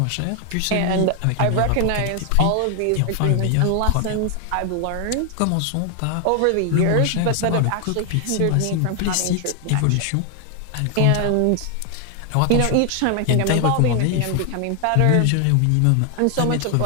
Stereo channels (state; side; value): different; both; correlation 0.00